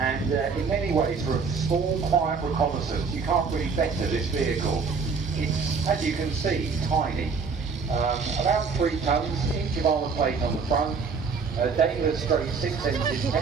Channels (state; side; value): quieter; left; 5.2 dB